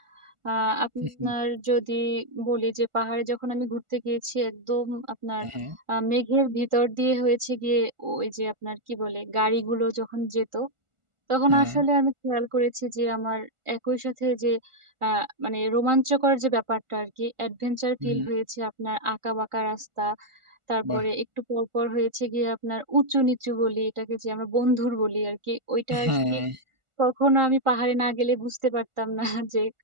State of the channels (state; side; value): late; left; 1.4 ms